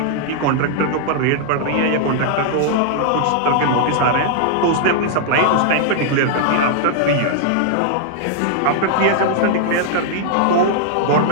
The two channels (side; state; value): both; different; correlation -0.01